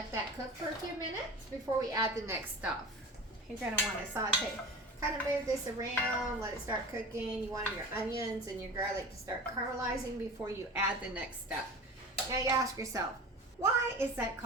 that cook for a few minutes before we add the next stuff. You're gonna wanna saute, kind of move this around, let it start cooking. You want your onions and your garlic to start caramelizing before you add the next step. Now you ask yourself, why is that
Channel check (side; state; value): both; normal; correlation 0.35